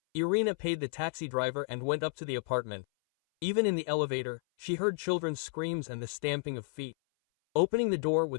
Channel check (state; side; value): silent; right; 56 dB below the other